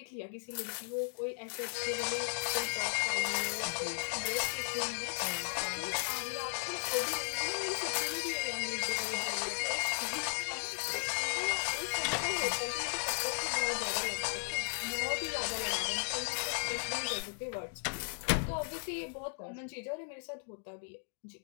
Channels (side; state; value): right; silent; 54 dB below the other